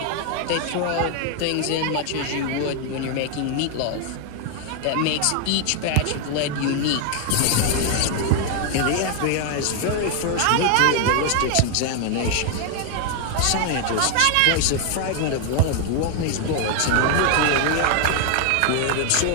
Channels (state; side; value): different; both; correlation 0.00